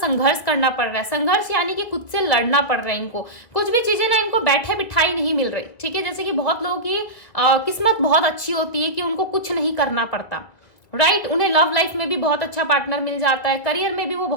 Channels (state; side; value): late; right; 2.1 ms